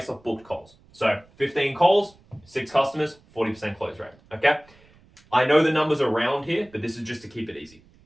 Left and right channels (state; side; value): noise; right; rumble, 29 dB below the sound